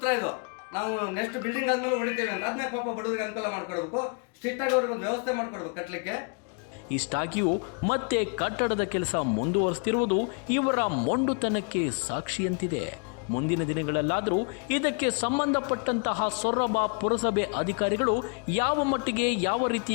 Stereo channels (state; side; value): quieter; right; 38.3 dB